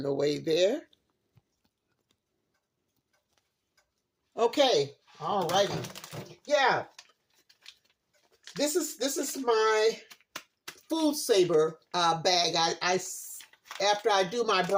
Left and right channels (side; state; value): both; identical; correlation 1.00